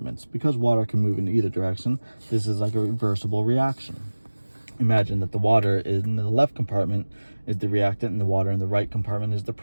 Because water can move in either direction, this is like a reversible reaction. Imagine that the water in the left compartment is the reactant and the water in the right compartment is the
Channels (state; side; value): inverted; both; correlation -1.00